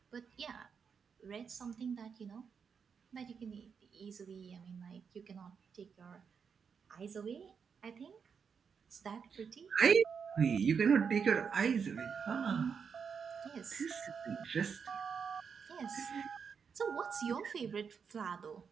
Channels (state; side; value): quieter; left; 6.3 dB